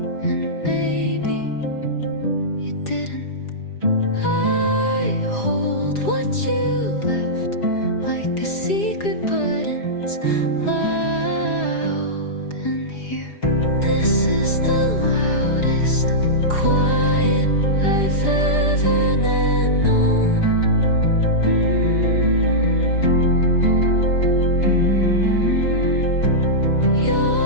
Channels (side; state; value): right; late; 4.9 ms